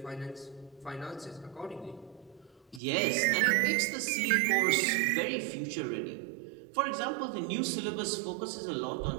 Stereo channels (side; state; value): left; drops out; at 2.8 s